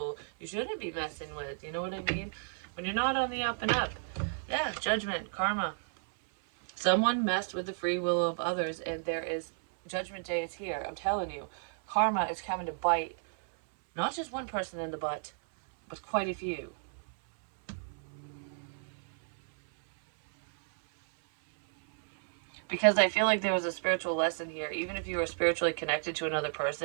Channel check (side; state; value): left; silent; 56 dB below the other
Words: you shouldn't be messing with. You know what I mean? When you're not on the up and up. Yeah, judgment, karma. Someone messed with the free will of others, and there is judgment day is here. I'm telling you, karma is coming to bite not just one person in the butt, but quite a few. Because I feel like there was a spiritual lesson here. Even if you were spiritually connected to another